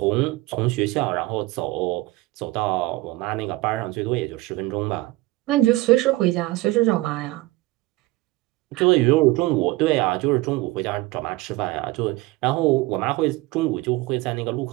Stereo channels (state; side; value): quieter; left; 20.1 dB